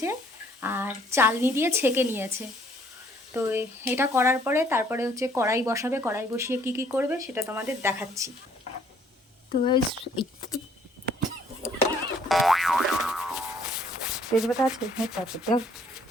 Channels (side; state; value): both; normal; correlation 0.62